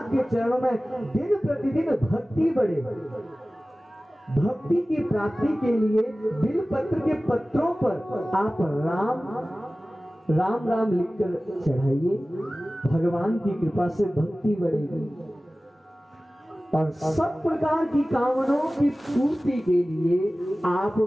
के चरणों में दिन प्रतिदिन भक्ति बढ़े। भक्ति की प्राप्ति के लिए बिलपत्र के पत्रों पर आप राम राम राम लिखकर चढ़ाइए, भगवान की कृपा से भक्ति बढ़ेगी। और सब प्रकार की कामनाओं की पूर्ति के लिए आप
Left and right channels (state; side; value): normal; both; correlation 0.97